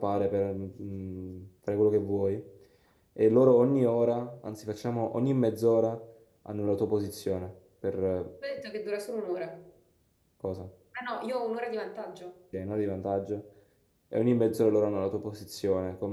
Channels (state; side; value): identical; both; correlation 1.00